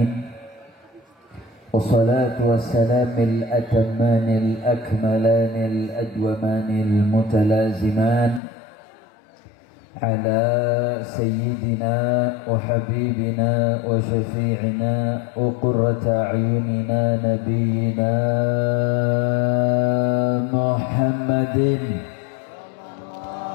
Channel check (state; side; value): drops out; right; at 8.4 s